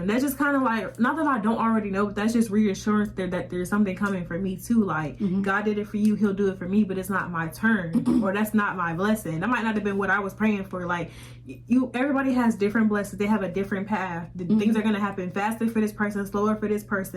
That's just kind of like, not that I don't already know, but that's just reassurance that there's something coming for me too. Like God did it for you, he'll do it for me, but it's not my turn or that's not my blessing. That might not have been what I was praying for. Like everybody has different blessings. They have a different path. Things are going to happen faster for this person, slower for this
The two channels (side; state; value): both; identical; correlation 1.00